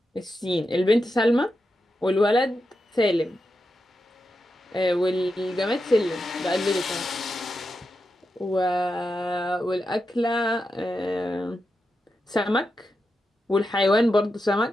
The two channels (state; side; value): normal; both; correlation 0.88